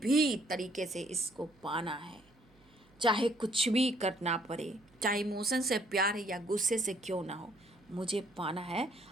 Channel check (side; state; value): right; noise; hum, 30 dB below the sound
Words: तरीके से इसको पाना है, चाहे कुछ भी करना पड़े, चाहे इमोशन से प्यार है या गुस्से से क्यों ना हो, मुझे पाना है।